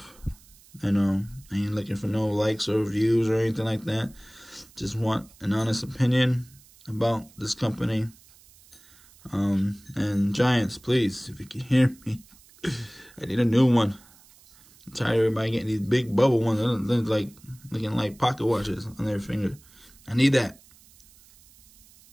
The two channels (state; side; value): noise; right; hiss, 26 dB below the sound